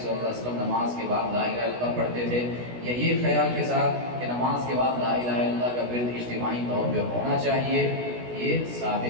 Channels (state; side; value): late; left; 16 ms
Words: اللہ علیہ وسلم نماز کے بعد لا الہ الا اللہ پڑھتے تھے، یا یہ خیال کے ساتھ کہ نماز کے بعد لا الہ الا اللہ کا ورد اجتماعی طور پہ ہونا چاہیے، یہ